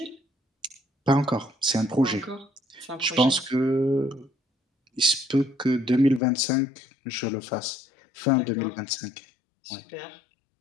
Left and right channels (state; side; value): drops out; right; at 6.2 s